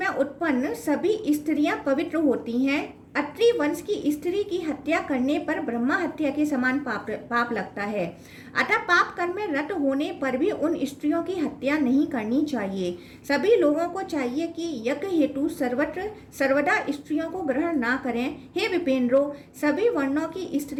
उत्पन्न सभी स्त्रियां पवित्र होती हैं। अत्रि वंश की स्त्री की हत्या करने पर ब्रह्मा हत्या के समान पाप लगता है। अतः पाप कर्म में रत होने पर भी उन स्त्रियों की हत्या नहीं करनी चाहिए। सभी लोगों को चाहिए कि यज्ञ हेतु सर्वदा स्त्रियों को ग्रहण ना करें। हे विपेंद्रो, सभी वर्णों की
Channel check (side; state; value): both; identical; correlation 1.00